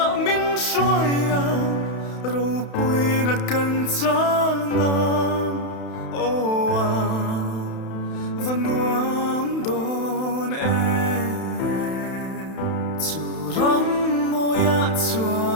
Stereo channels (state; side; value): late; right; 31 ms